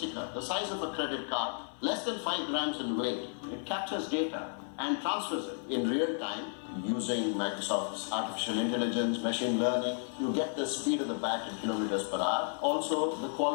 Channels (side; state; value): right; silent; 56 dB below the other